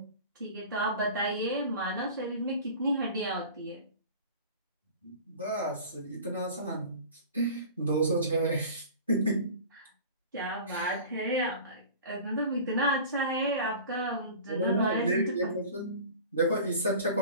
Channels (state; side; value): inverted; both; correlation -0.39